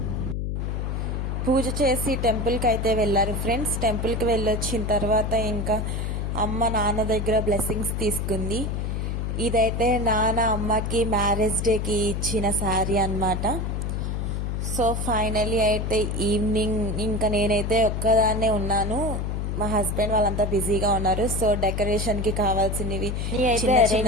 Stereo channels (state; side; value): noise; left; hum, 2 dB below the sound